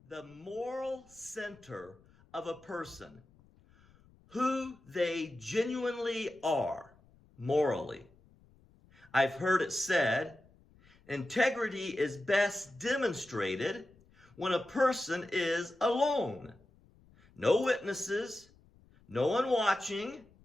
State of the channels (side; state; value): left; noise; rumble, 29 dB below the sound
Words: the moral center of a person, who they genuinely are morally. I've heard it said, integrity is best demonstrated when a person is alone. No witnesses, no one watching,